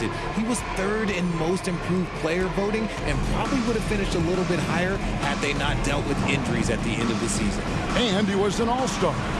it. He was 3rd in most improved player voting and probably would have finished a little bit higher had they not dealt with injuries at the end of the season. And he was an all-star.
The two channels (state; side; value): identical; both; correlation 1.00